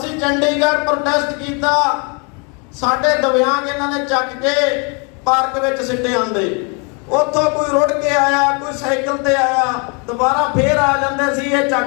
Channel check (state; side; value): quieter; right; 34.5 dB